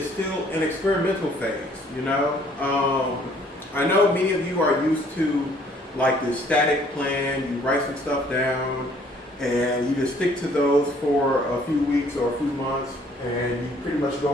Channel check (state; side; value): normal; both; correlation 0.60